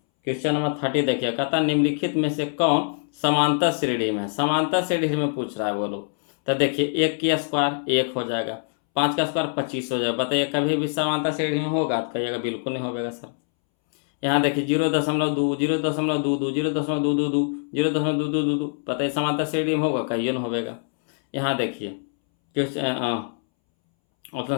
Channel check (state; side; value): silent; right; 63 dB below the other